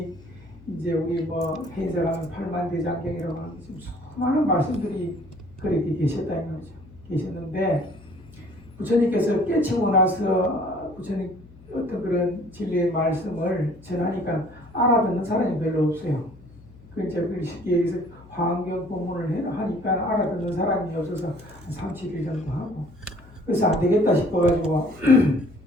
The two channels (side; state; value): left; noise; hum, 22 dB below the sound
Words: 이제 우리 뭐 해인사가는 8만대장경이라고 하는 지금 수많은 말씀들이 그렇게 계셨다는 거죠. 계셨는데 부처님께서 깨치고 나서 부처님 어떤 그런 진리의 말씀을 전하니까 알아듣는 사람이 별로 없어요. 그 이제 쉽게 얘기해서 화엄경 법문을 하니까 알아듣는 사람이 없어서 한 3, 7일 정도 하고, 그래서 안 되겠다 싶어가지고